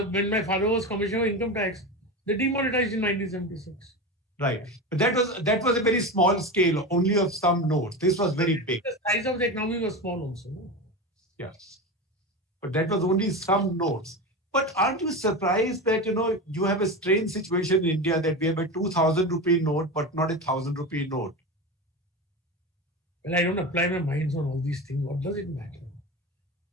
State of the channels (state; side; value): normal; both; correlation 0.23